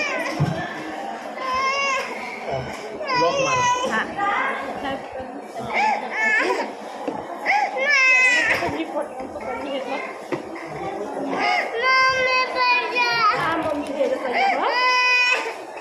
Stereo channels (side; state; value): both; identical; correlation 1.00